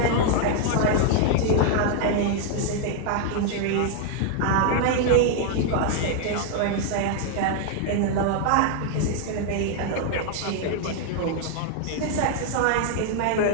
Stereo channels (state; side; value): different; both; correlation 0.00